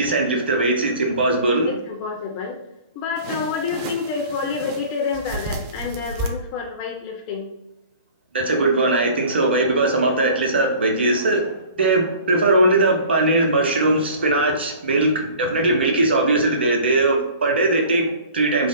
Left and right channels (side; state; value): both; inverted; correlation -0.46